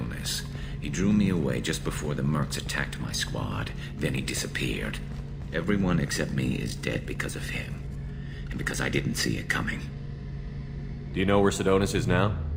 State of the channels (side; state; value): both; identical; correlation 1.00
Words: He drew me away just before the Mercs attacked my squad. Then he disappeared. Everyone except me is dead because of him. And because I didn't see it coming. Do you know where Sidonis is now?